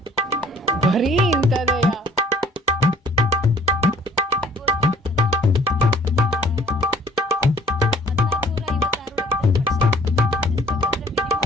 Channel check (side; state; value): both; normal; correlation 0.55